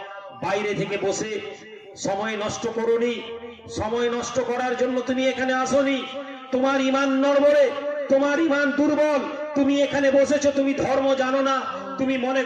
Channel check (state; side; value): identical; both; correlation 1.00